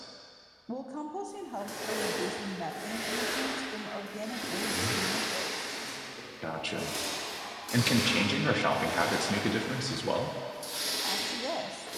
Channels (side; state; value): both; identical; correlation 1.00